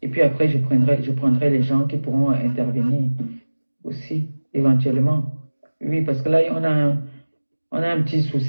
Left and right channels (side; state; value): both; inverted; correlation -1.00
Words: Et puis après, je prendrai les gens qui pourront intervenir aussi, éventuellement. Oui, parce que là, on a un petit